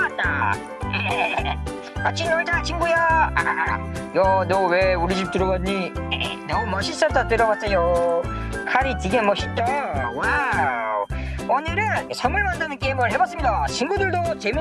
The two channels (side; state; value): both; identical; correlation 1.00